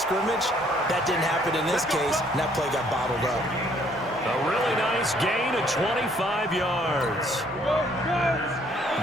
That didn't happen in this case, and that play got bottled up. A really nice gain of 25 yards.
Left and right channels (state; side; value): normal; both; correlation 0.63